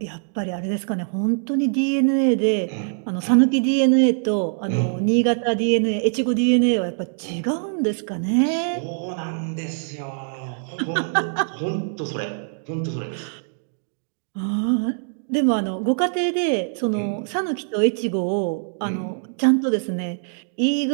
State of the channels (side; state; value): left; silent; digital silence